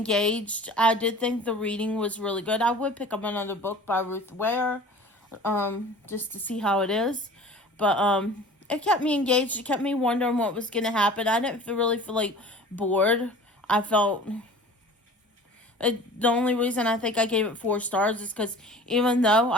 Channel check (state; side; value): normal; both; correlation 0.43